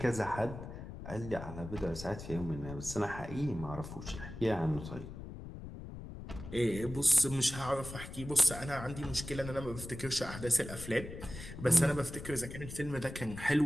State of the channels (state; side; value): noise; left; rumble, 11 dB below the sound